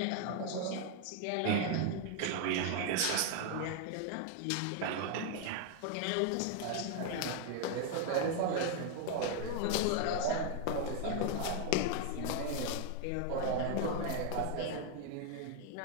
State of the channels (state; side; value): different; both; correlation 0.01